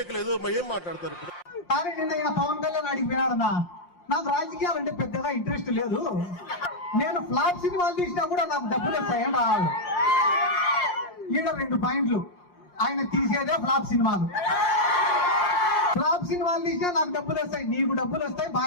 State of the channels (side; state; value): right; late; 5.7 ms